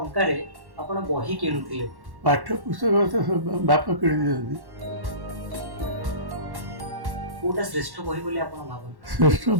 ଆପଣ ବହି କିଣୁଥିଲେ। ପାଠ୍ୟ ପୁସ୍ତକ ତ ବାପା କିଣି ଦିଅନ୍ତି। କୋଉଟା ଶ୍ରେଷ୍ଠ ବହି ବୋଲି ଆପଣ ଭାବନ୍ତି? ଶ୍ରେଷ୍ଠ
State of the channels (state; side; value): late; left; 1.1 ms